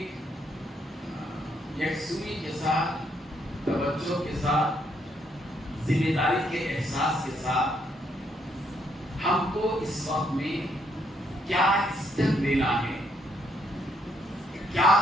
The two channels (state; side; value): normal; both; correlation 0.73